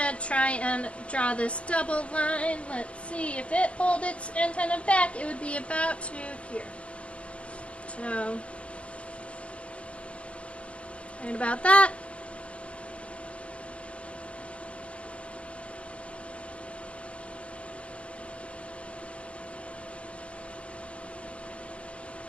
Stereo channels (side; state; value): right; late; 0.061 ms